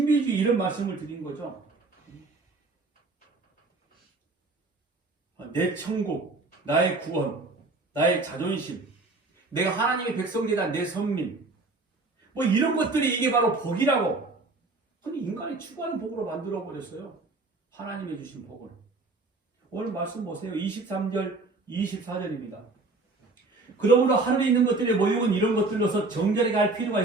이런 말씀을 드린 거죠. 내 천국, 나의 구원, 나의 자존심, 내가 하나님의 백성되다 내 선민 이런 것들이 이게 바로 복이라고. 근데 인간이 추구하는 복으로 만들어버렸어요. 하나님이 주신 복을. 오늘 말씀 보세요. 23절, 24절입니다. 그러므로 하늘에 있는 것들의 모형은 이런 것들로서 정결하게 할 필요가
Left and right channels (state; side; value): quieter; left; 3.4 dB